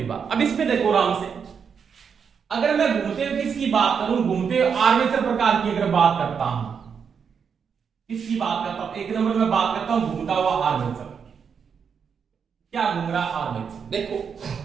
बात। अब इसमें देखो आराम से, अगर मैं घूमते हुए किसकी बात करूं, घूमते हुए आर्मेचर प्रकार की अगर बात करता हूं, किसकी बात करता हूं, एक नंबर में बात करता हूं घूमता हुआ आर्मेचर। क्या घूम रहा आर्मेचर, देखो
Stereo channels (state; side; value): quieter; left; 6.6 dB